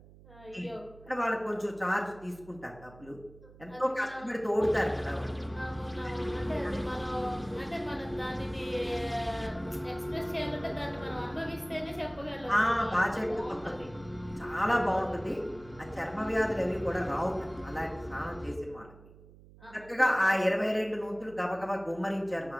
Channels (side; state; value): right; noise; hum, 21 dB below the sound